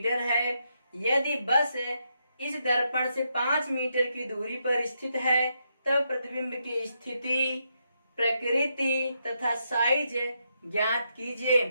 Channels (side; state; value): both; inverted; correlation -0.81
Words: है। यदि बस इस दर्पण से 5 मीटर की दूरी पर स्थित है तब प्रतिबिंब की स्थिति, प्रकृति तथा साइज ज्ञात कीजिए।